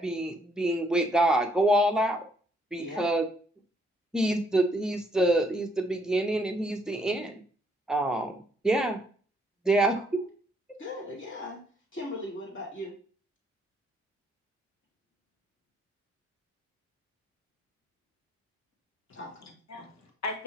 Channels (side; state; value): both; normal; correlation 0.70